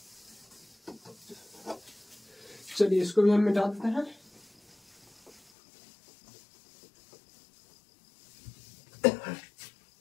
चलिए इसको भी हम मिटा देते हैं।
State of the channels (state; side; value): drops out; right; at 5.4 s